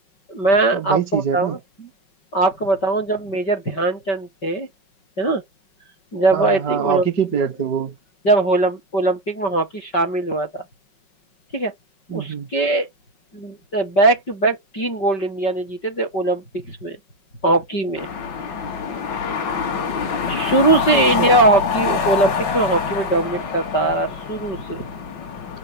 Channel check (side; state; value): right; late; 5.4 ms